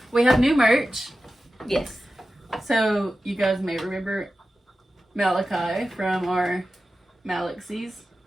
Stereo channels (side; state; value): both; normal; correlation 0.94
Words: We have new merch. Yes. So, you guys may remember Malachi from our Malaxies.